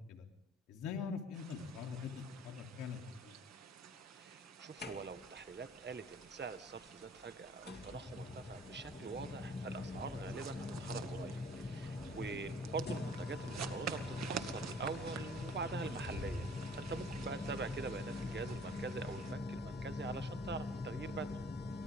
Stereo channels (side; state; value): both; normal; correlation 0.53